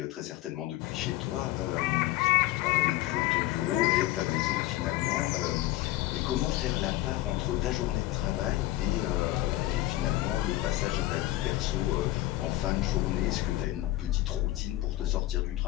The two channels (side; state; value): right; quieter; 16.5 dB